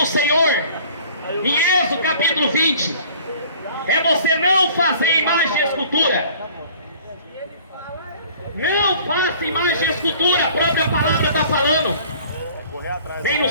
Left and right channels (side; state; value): both; inverted; correlation -0.51